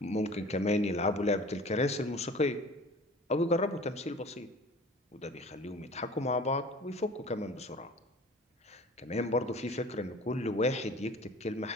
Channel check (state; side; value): normal; both; correlation 0.44